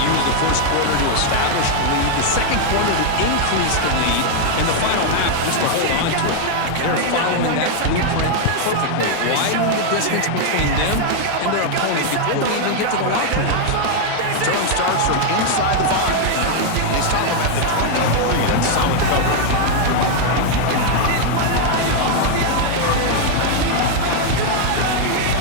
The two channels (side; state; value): both; different; correlation 0.00